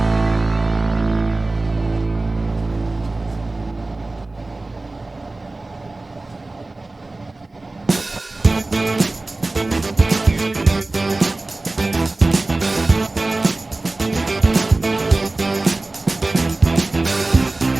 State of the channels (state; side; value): quieter; left; 3.1 dB